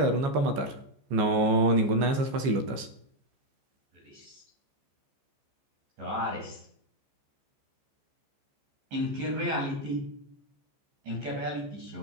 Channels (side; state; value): left; late; 15 ms